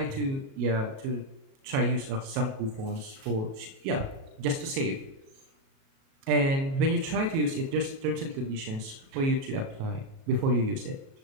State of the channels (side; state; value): left; late; 37 ms